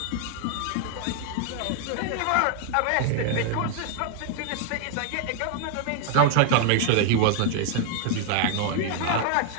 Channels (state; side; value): different; both; correlation 0.00